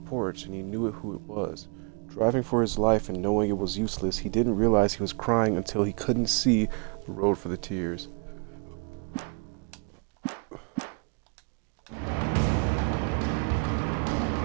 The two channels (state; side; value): quieter; left; 36.6 dB